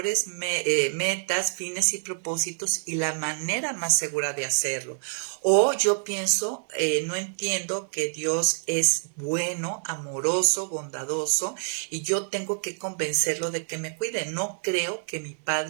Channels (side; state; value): left; silent; 60 dB below the other